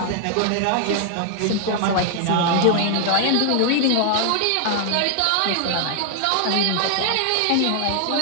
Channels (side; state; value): both; different; correlation 0.00